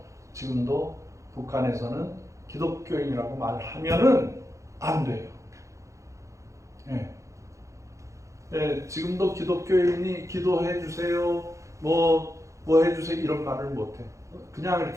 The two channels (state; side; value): late; left; 0.15 ms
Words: 지금도 북한에서는 기독교인이라고 말하면은 안 돼요. 예, 지금도 기독교인이 기도해 주세요, 뭐 해주세요 이런 말을 못해. 그냥